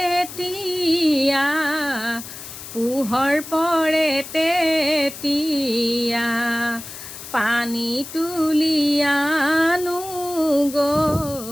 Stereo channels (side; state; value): left; noise; hiss, 12 dB below the sound